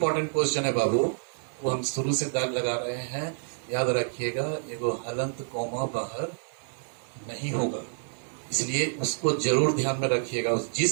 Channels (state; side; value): silent; left; digital silence